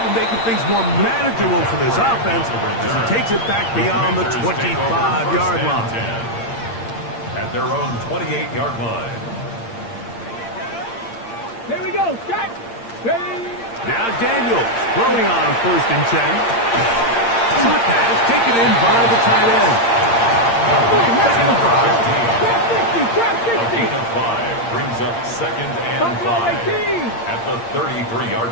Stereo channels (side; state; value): right; late; 8.7 ms